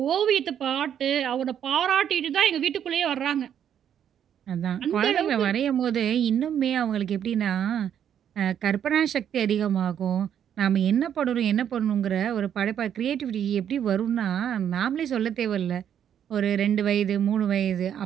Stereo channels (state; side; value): quieter; left; 9.3 dB